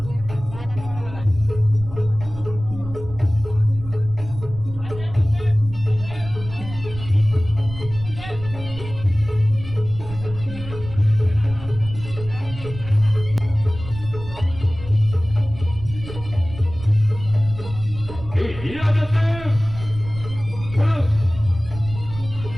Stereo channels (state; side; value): noise; right; rumble, 13 dB below the sound